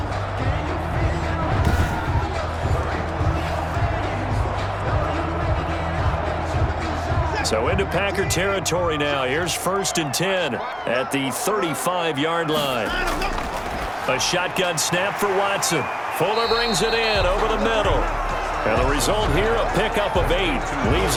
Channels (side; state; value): both; identical; correlation 1.00